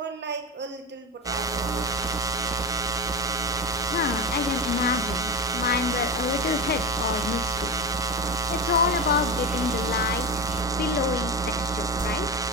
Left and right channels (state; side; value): normal; both; correlation 0.21